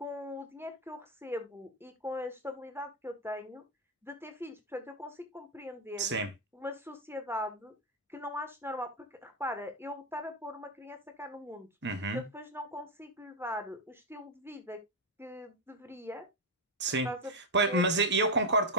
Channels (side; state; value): both; normal; correlation 0.04